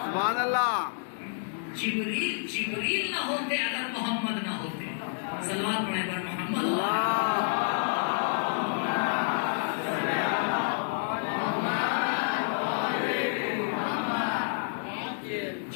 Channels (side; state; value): right; silent; digital silence